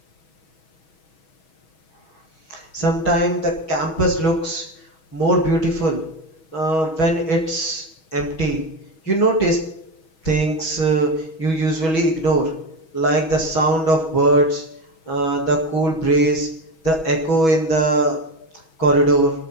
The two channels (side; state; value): right; late; 6.2 ms